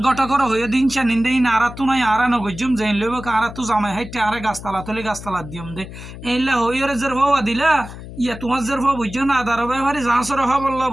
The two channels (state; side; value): noise; left; hum, 13 dB below the sound